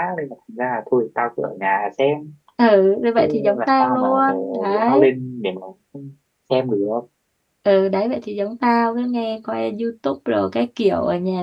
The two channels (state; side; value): identical; both; correlation 1.00